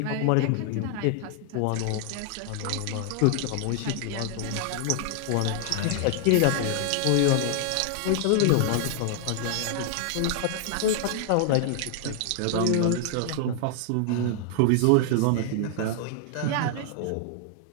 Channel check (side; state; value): both; different; correlation 0.00